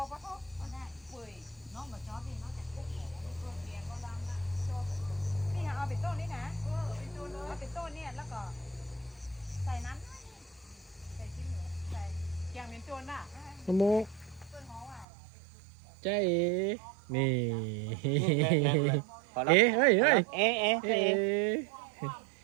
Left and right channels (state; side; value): drops out; left; at 15.1 s